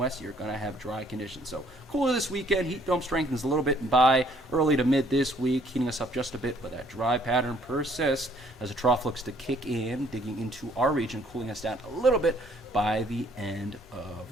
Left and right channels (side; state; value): both; normal; correlation 0.63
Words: you're going to have dry conditions. So cooler this weekend. Heat dome strengthens a little bit by early to mid this week, heating us up just a bit, but that dry pattern persists as a trough looks to kick in, digging into our region, cooling us down a little bit by the end of